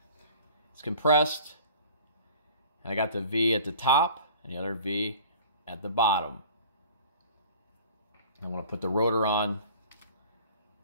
It's compressed, and I got the V at the top and the other V at the bottom. I want to put the rotor on.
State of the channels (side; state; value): both; inverted; correlation -0.45